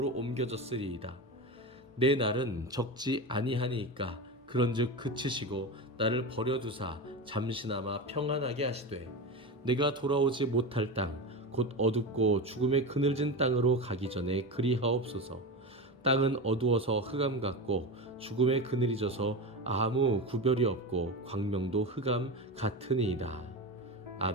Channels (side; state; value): both; normal; correlation 0.21